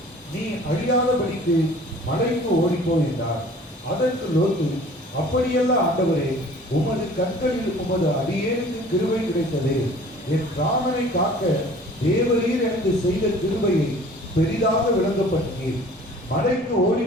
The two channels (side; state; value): both; normal; correlation 0.49